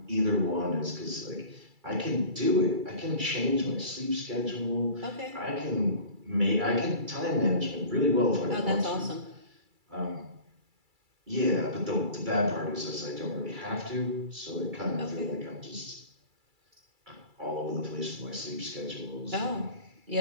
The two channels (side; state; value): left; late; 2.3 ms